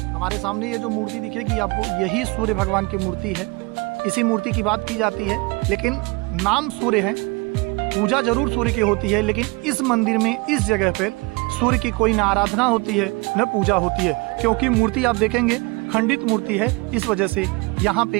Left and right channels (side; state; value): left; quieter; 26.8 dB